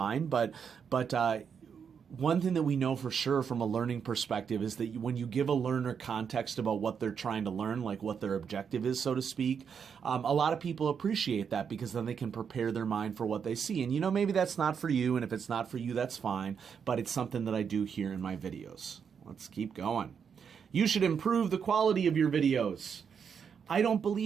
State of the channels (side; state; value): left; quieter; 6.9 dB